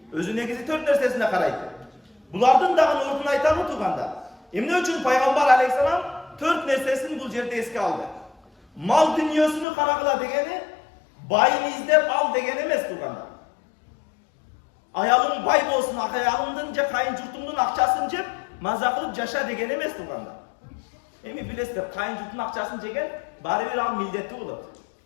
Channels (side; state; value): right; drops out; at 9.7 s